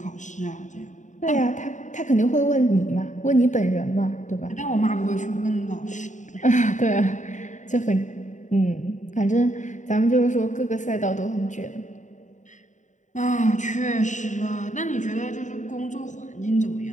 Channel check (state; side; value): late; right; 0.36 ms